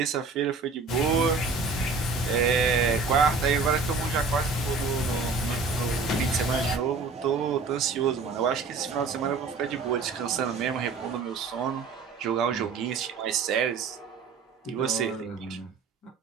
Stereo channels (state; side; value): quieter; left; 4.4 dB